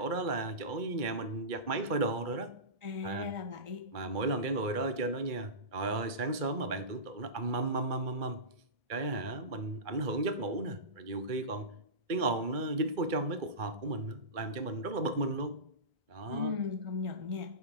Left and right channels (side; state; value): left; late; 2.2 ms